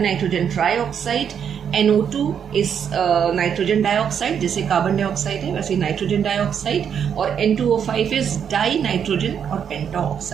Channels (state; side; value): quieter; left; 7.9 dB